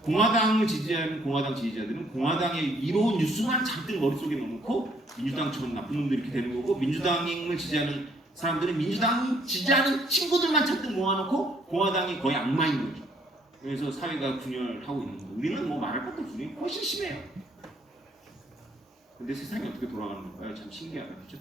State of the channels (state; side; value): normal; both; correlation 0.65